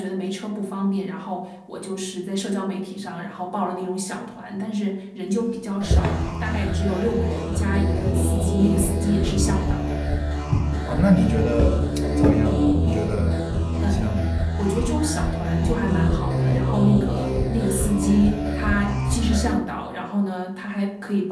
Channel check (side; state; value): both; identical; correlation 1.00